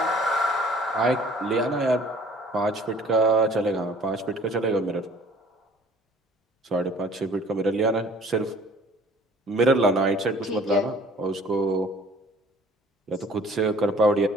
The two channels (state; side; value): normal; both; correlation 0.53